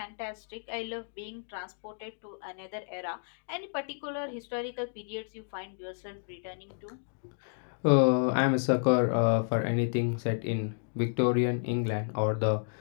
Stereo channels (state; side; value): silent; right; digital silence